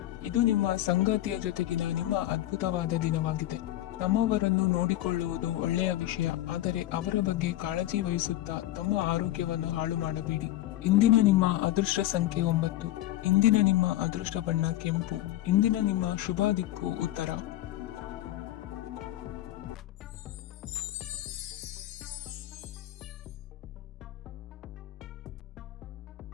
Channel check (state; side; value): quieter; right; 14.7 dB